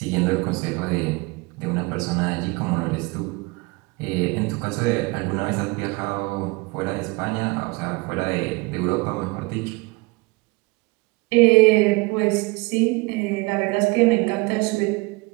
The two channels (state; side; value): quieter; left; 25.7 dB